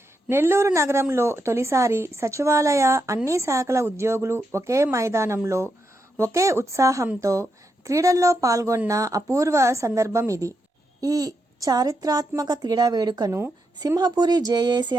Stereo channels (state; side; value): normal; both; correlation 0.83